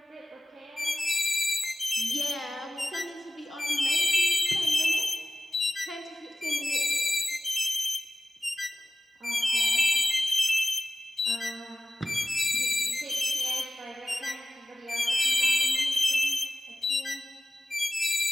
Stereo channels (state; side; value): normal; both; correlation 0.96